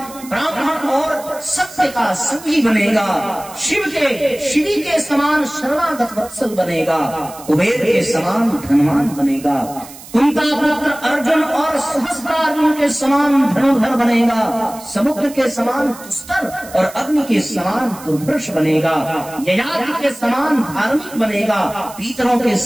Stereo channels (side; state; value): right; noise; hiss, 17 dB below the sound